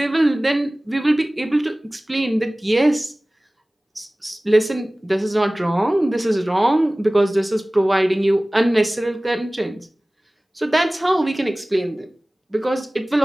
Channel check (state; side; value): normal; both; correlation 0.98